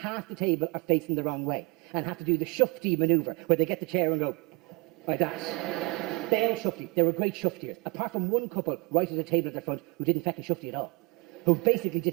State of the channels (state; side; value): quieter; left; 27.7 dB